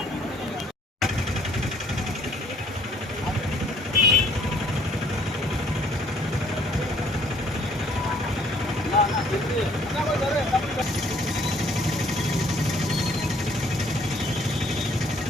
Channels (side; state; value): both; normal; correlation 0.61